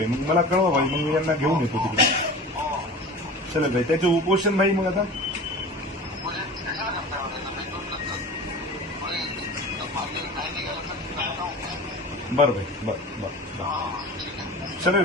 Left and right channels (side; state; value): both; normal; correlation 0.36